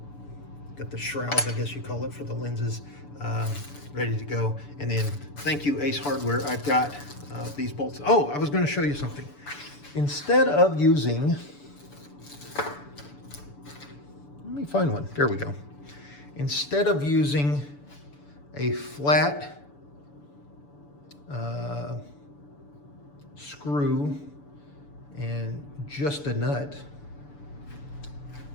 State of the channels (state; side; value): late; right; 6.9 ms